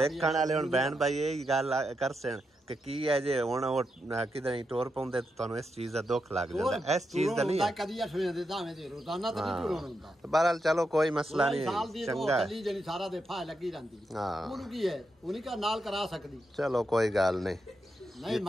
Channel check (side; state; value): both; normal; correlation 0.85